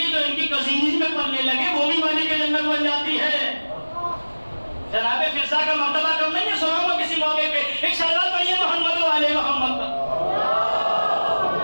جو ان کی کزینز میں پلنے لگے وہ بھی مالک جنت بن جاتی ہے. جناب فرزا کا مرتبہ کم نہیں ہے, سناؤں گا کسی موقع پہ. ایک شہزاد پڑھیے محمد و آل محمد کا.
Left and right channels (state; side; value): inverted; both; correlation -1.00